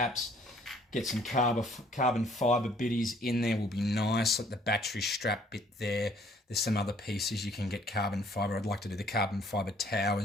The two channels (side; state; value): both; normal; correlation 0.60